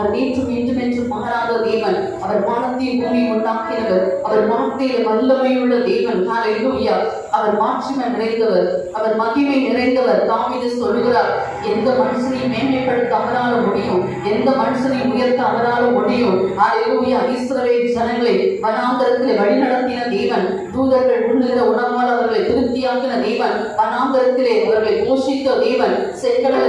நேற்றும் இன்றும் என்றும் மாறாத தேவன். அவர் வானத்தையும் பூமியை உண்டாக்கினவர். அவர் வார்த்தையில வல்லமையுள்ள தேவன். ஹல்லேலூயா. அவர் மாட்சிமை நிறைந்தவர், அவர் மகிமை நிறைந்தவர். தாவீது சொல்கிறார், எந்த மனுஷனையும் மேன்மைப்படுத்த அவரால முடியும், எந்த மனுஷனையும் உயர்த்த அவரால முடியும். ஹல்லேலூயா. இஸ்ரவேல் ஜனங்களை வனாந்தரத்தில் வழிநடத்தின தேவன். தூதர்கள் உண்ணுகிற உணவால் அவர்களை திருப்தியாக்கின தேவன். வனாந்தரத்திலே அவர்களை போஷித்த தேவன். செங்கடலை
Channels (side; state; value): both; identical; correlation 1.00